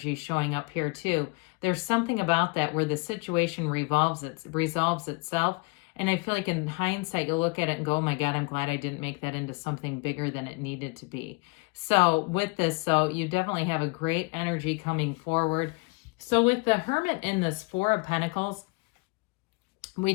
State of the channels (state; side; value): quieter; right; 28.2 dB